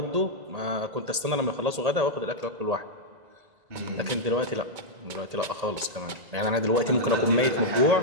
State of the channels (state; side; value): late; left; 1.8 ms